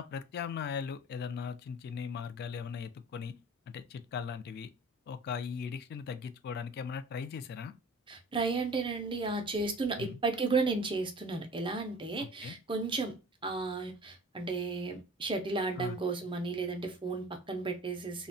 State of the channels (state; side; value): normal; both; correlation 0.44